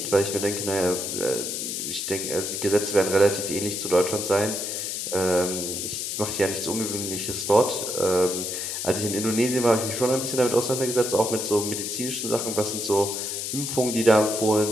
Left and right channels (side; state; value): left; noise; hiss, 3 dB below the sound